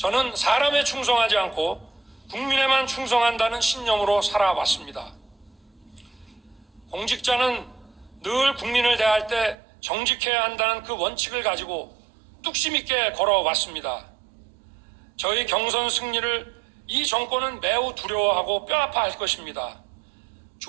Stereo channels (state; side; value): drops out; left; at 9.6 s